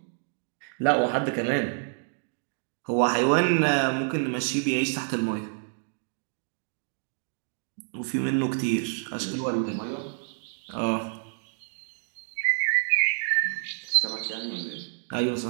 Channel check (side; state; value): left; silent; 57 dB below the other